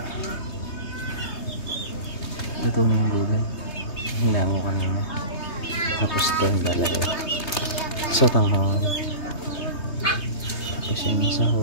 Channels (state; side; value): late; right; 3.2 ms